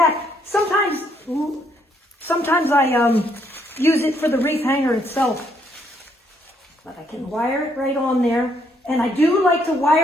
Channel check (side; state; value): both; normal; correlation 0.71